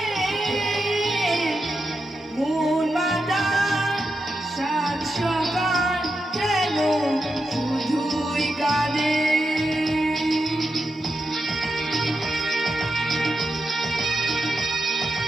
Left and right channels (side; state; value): both; normal; correlation 0.87